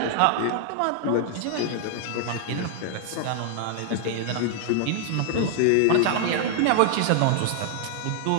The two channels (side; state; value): both; different; correlation 0.00